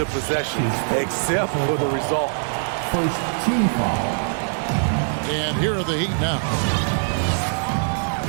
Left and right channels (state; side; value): silent; left; 64 dB below the other